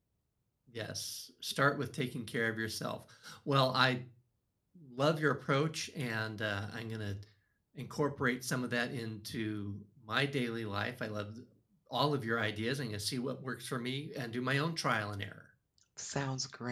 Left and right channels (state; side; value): identical; both; correlation 1.00